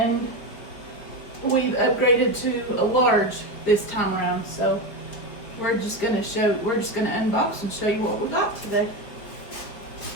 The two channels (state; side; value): late; right; 5.2 ms